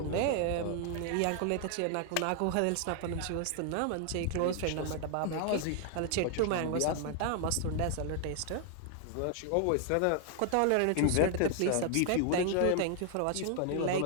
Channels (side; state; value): both; different; correlation 0.00